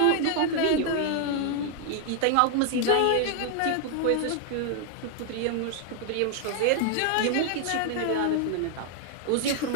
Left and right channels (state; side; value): different; both; correlation 0.00